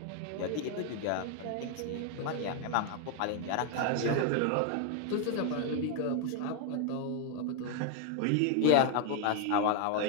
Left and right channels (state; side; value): different; both; correlation 0.00